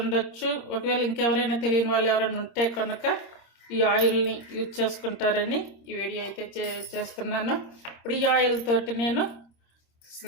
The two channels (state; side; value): late; right; 26 ms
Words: ఒకవేళ ఇంకెవరైనా తెలియని వాళ్ళు ఎవరైనా ఉంటే కనుక ఈ ఆయిల్ని యూజ్ చేసుకుంటారని ఈ వీడియో అయితే చేస్తున్నాను. ఇప్పుడు ఈ ఆయిల్ తోటి నేను